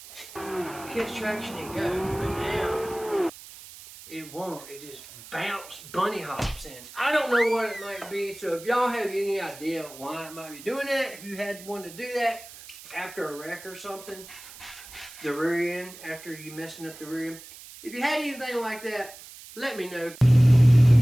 catch traction and go. But now, it won't. It just bunny hops in. I don't know what it might be, so if y'all have any idea why it might be doing that, if you had one to do that after a wreck or something, the rear end, after you messing up the rear end, if you had anything like that, let me know.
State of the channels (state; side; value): noise; right; hiss, 17 dB below the sound